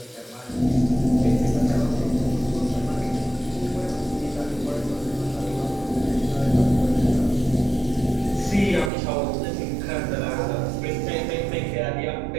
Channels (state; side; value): drops out; left; at 8.9 s